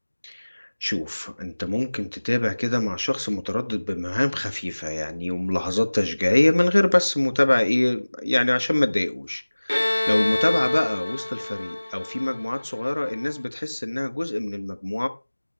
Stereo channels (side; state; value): both; inverted; correlation -1.00